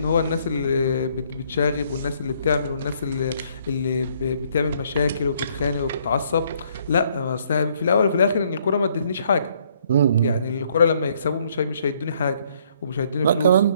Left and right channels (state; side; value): inverted; both; correlation -0.66